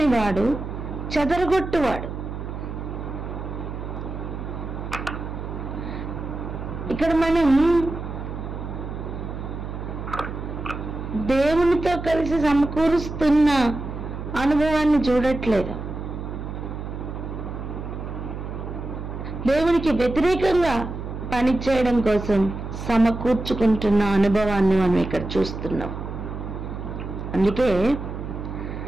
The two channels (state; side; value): noise; right; hum, 7 dB below the sound